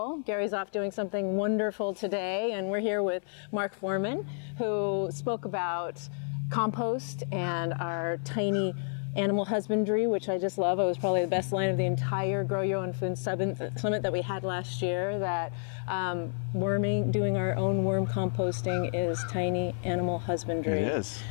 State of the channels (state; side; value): silent; right; 58 dB below the other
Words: Gary's off doing something wonderful today, and we're here with Mark Foreman, who spoke about compost and our tiny animal husbandry, which I just love. It was probably the best line of the entire Grow Your Own Food Summit that we had last year, that doing our own worm composting is tiny animal husbandry. It is,